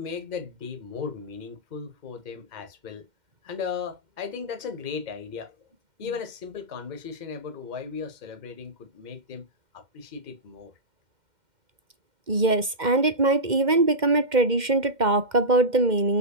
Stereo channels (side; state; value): left; late; 2.1 ms